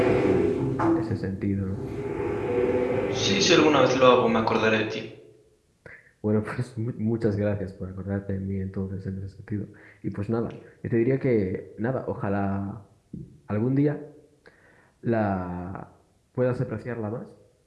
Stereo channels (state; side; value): identical; both; correlation 1.00